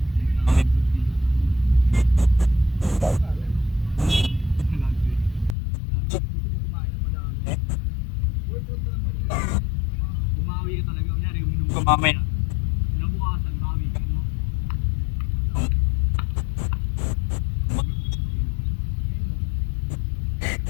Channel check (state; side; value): drops out; right; at 5.6 s